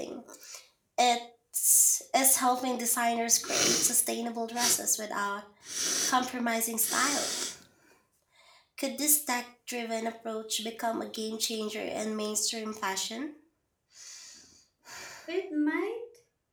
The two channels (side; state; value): both; identical; correlation 1.00